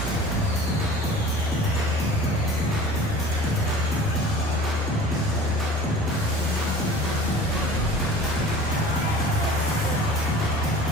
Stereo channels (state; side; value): normal; both; correlation 0.42